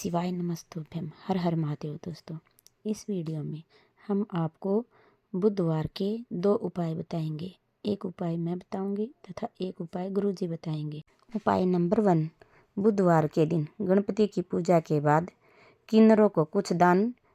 नमस्तुभ्यम। हर हर महादेव। दोस्तों, इस वीडियो में हम आपको बुधवार के 2 उपाय बताएंगे। एक उपाय मैं बताऊंगी तथा एक उपाय गुरुजी बताएंगे। उपाय नंबर 1, बुधवार के दिन गणपति की पूजा के बाद किन्नरों को कुछ दान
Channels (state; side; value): identical; both; correlation 1.00